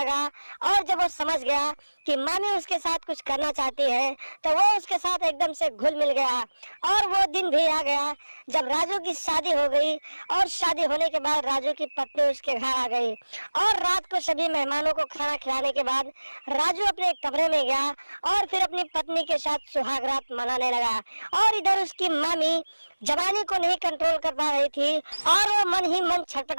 और जब वो समझ गया कि मामी उसके साथ कुछ करना चाहती है तो वो उसके साथ एकदम से घुल मिल गया। और वो दिन भी आ गया जब राजू की शादी हो गई और शादी होने के बाद राजू की पत्नी उसके घर आ गई और रात को सभी मेहमानों को खाना खिलाने के बाद राजू अपने कमरे में गया और फिर अपनी पत्नी के साथ सुहाग रात मनाने लगा। और इधर उसकी मामी जवानी को नहीं कंट्रोल कर पा रही थी और वो मन ही मन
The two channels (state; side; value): inverted; both; correlation -1.00